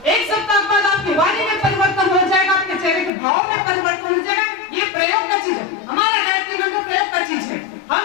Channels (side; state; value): right; drops out; at 3.1 s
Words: एक सप्ताह बाद आपकी वाणी में परिवर्तन हो जाएगा, आपके चेहरे के भाव में परिवर्तन हो जाएगा। ये प्रयोग का चीज है, हमारा गायत्री मंत्र प्रयोग का चीज है।